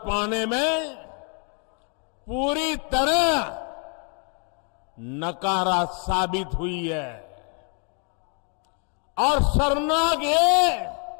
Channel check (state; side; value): quieter; right; 39.1 dB